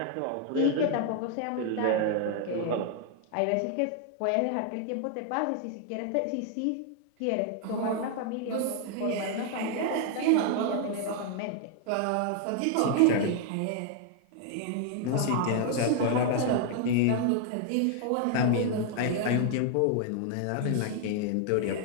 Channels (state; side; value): different; both; correlation 0.00